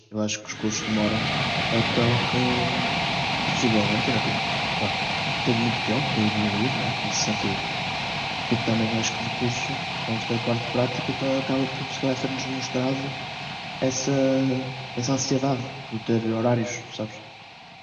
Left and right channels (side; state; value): both; identical; correlation 1.00